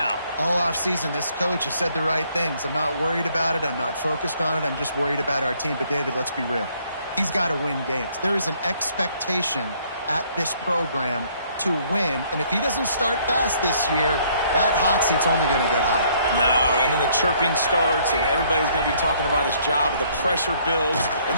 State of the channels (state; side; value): inverted; both; correlation -0.64